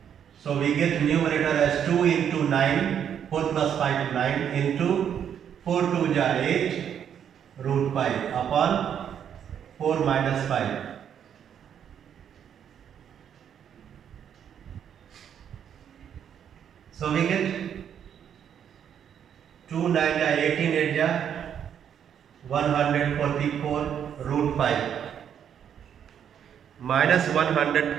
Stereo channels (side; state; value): left; quieter; 8.7 dB